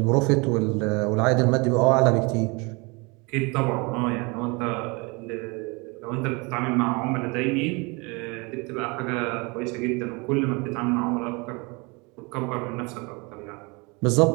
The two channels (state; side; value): quieter; left; 28.2 dB